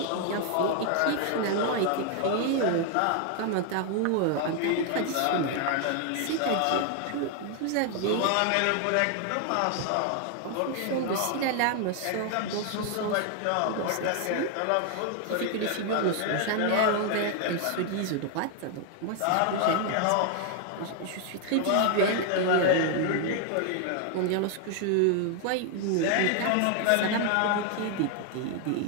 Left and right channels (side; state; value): both; different; correlation 0.00